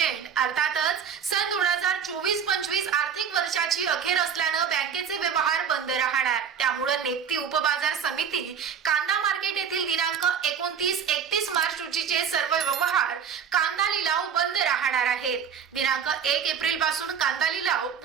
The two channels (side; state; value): left; quieter; 7.4 dB